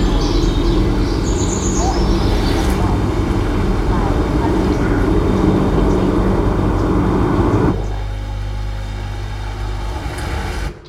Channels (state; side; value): identical; both; correlation 1.00